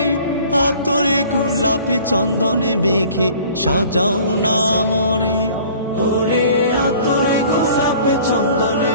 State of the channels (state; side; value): inverted; both; correlation -0.50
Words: আতরে গোলাপে চন্দনে মেখে সাজাও না মোরে। ওরে আতরে গোলাপে চন্দনে